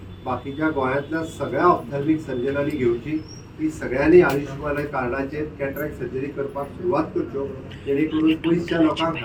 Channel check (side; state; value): both; identical; correlation 1.00